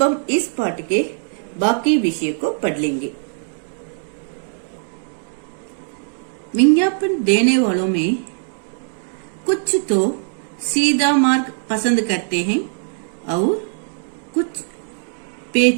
हम इस पाठ के बाकी विषय को पढ़ लेंगे। विज्ञापन देने वालों में कुछ तो सीधा मार्ग पसंद करते हैं और कुछ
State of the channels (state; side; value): silent; left; digital silence